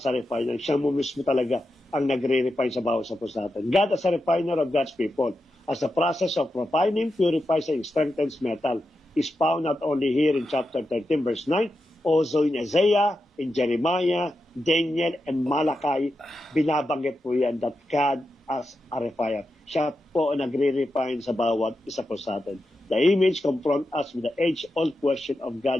a refiner. Siya mo mismo talaga ang nagre-refine sa bawat sa puso natin. God as a refiner of God's people. As the process of refining, purifies and strengthens metal is found not only here in chapter 13 verse 9, also in Isaiah, in Jeremiah, Daniel, and Malachi, binabanggit po yan that God as a refiner. Siya po nagre-refine sa bawat isa po sa atin. The image confront us with the age-old question of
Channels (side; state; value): both; normal; correlation 0.89